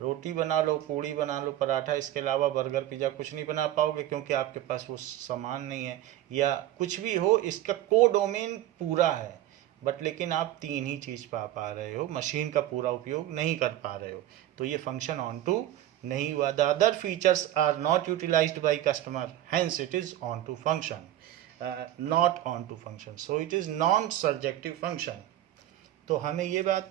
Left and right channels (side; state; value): left; quieter; 13.1 dB